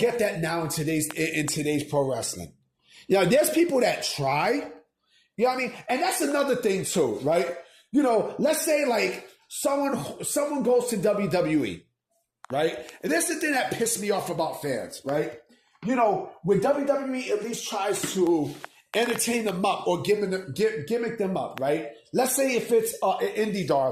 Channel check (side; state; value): both; identical; correlation 1.00